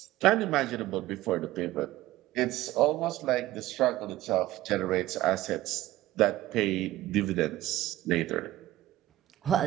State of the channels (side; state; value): left; quieter; 15.9 dB